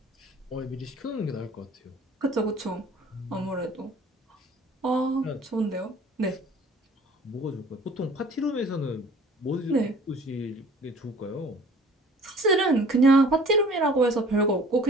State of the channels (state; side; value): normal; both; correlation 0.49